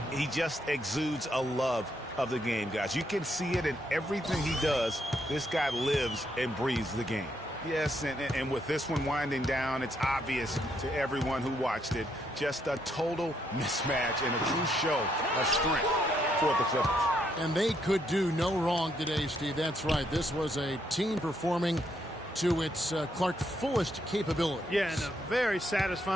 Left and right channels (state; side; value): normal; both; correlation 0.75